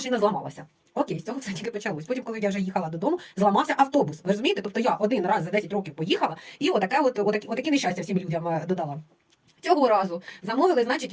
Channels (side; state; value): both; identical; correlation 1.00